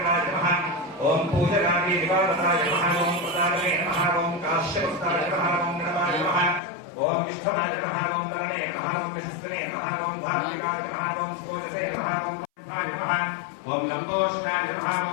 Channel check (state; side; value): drops out; right; at 6.6 s